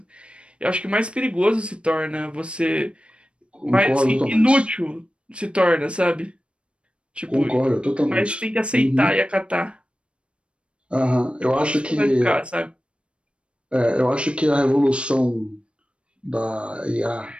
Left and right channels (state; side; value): late; left; 0.058 ms